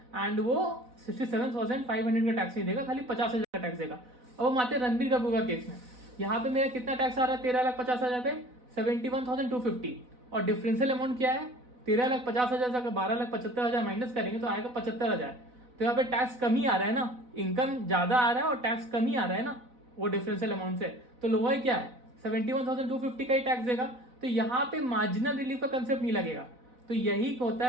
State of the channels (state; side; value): late; left; 4.0 ms